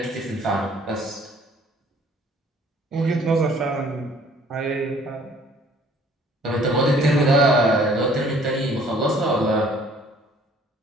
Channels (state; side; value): normal; both; correlation 0.57